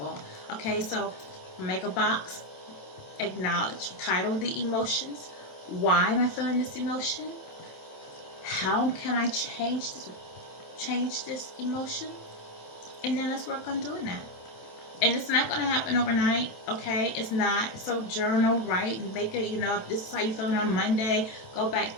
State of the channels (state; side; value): late; right; 27 ms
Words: okay? So make a box, acknowledge, title the emotions. Why am I feeling this emotion? How can I change this emotion? And then let's work on doing that. And it's not going to happen overnight, okay? It's not. So journal, write, and make it, if this is how you're feeling on Monday, go back